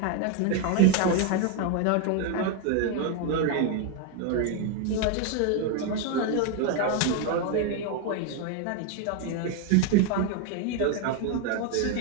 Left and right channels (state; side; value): different; both; correlation 0.01